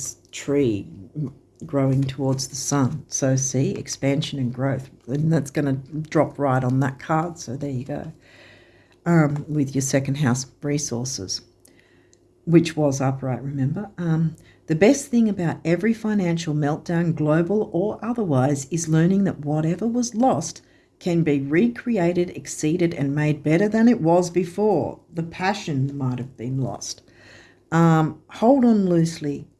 tree growing towards the sun. So see, expansion and growth. And that's going to drop right on that card. So there you go. With your second house resources, which was upright, remember? The best thing about every financial meltdown, global or otherwise, is learning that whatever was lost can be recreated, exceeded, and made better than it was before. The passion might have been lost. Hold on loosely,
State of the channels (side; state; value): both; identical; correlation 1.00